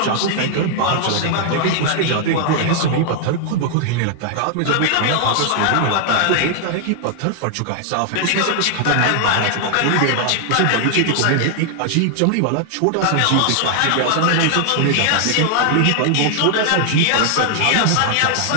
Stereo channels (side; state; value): both; different; correlation 0.00